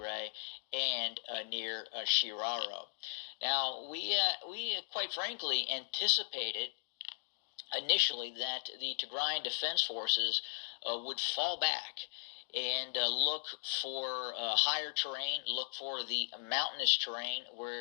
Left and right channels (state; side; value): silent; right; digital silence